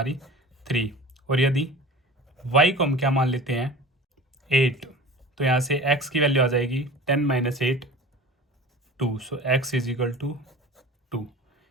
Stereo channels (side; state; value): both; normal; correlation 0.38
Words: 3, और यदि y को हम क्या मान लेते हैं 8, तो यहाँ से x की वैल्यू आ जाएगी 10 minus 8 2। So x is equal to 2।